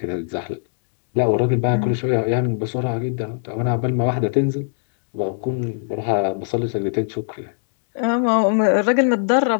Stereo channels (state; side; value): silent; right; digital silence